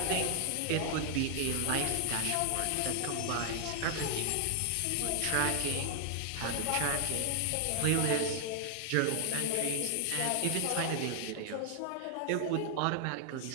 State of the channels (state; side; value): different; both; correlation 0.00